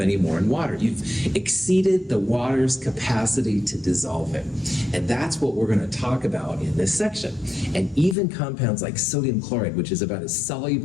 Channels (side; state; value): right; drops out; at 8.2 s